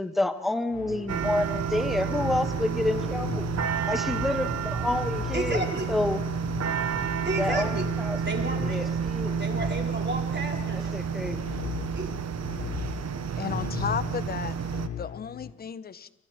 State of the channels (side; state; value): both; normal; correlation 0.56